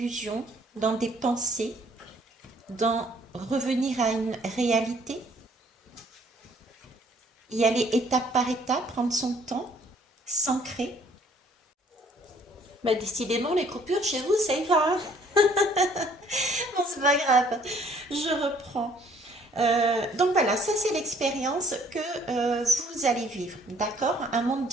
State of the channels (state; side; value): normal; both; correlation 0.60